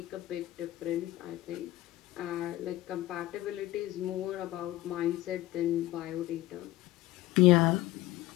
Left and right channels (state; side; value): quieter; right; 15.9 dB